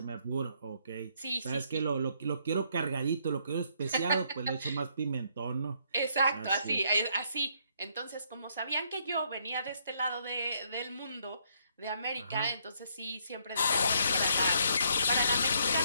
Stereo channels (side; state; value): both; inverted; correlation -0.70